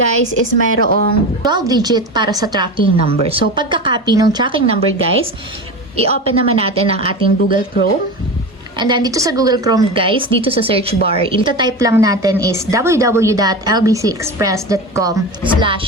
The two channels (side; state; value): both; normal; correlation 0.26